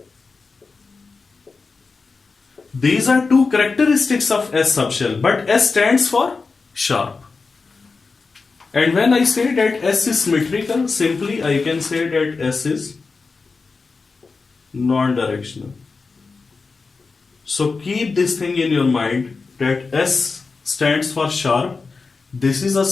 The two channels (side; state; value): right; quieter; 4.4 dB